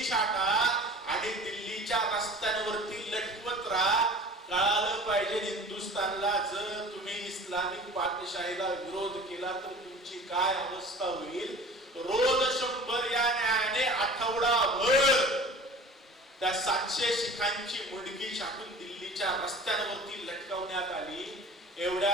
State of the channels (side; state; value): both; normal; correlation 0.42